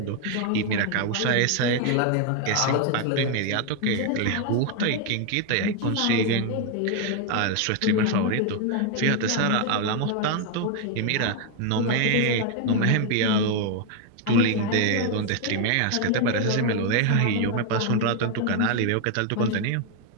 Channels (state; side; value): different; both; correlation 0.01